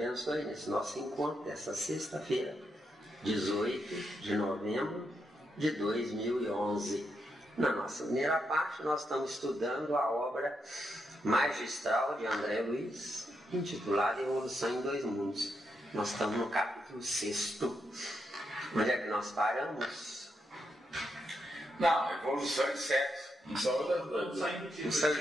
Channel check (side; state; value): both; normal; correlation 0.82